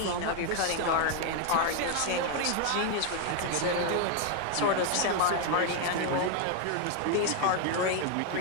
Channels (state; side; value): different; both; correlation 0.01